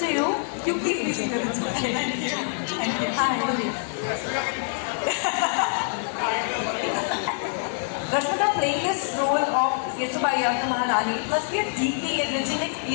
to you. You please be seated. It's okay. Thank you. Thank you. Hi. Rashmika, playing this role of Kesubai Yasna Maharani must be a deeply enriching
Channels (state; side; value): silent; right; 61 dB below the other